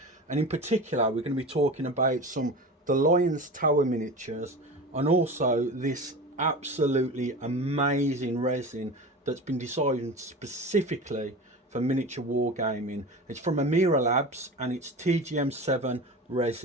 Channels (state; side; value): normal; both; correlation 0.31